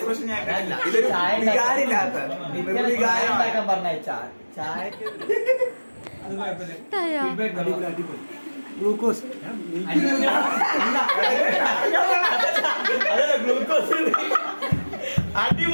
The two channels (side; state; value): both; inverted; correlation -1.00